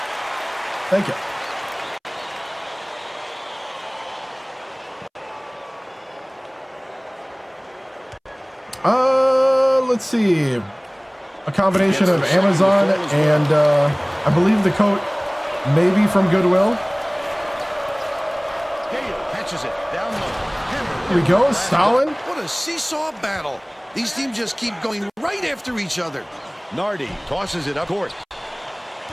Thank you. Let's see. A combination of Amazon and I believe the coat may be from Goodwill. Gale catches it down low. Here we go, Stalin. What a seesaw battle. These teams just keep going right after each other. Nardi tosses it up court.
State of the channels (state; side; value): identical; both; correlation 1.00